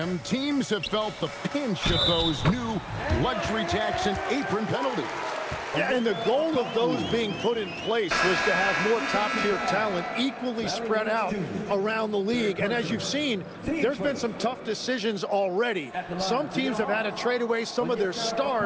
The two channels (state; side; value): identical; both; correlation 1.00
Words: teams have felt the pinch of those new luxury tax and apron penalties. Yeah, and the goal of those being put in place was to have more top-tier talent equally spread out around the league. And as you've seen, there's been some tough decisions already. Some teams have had to trade away some of their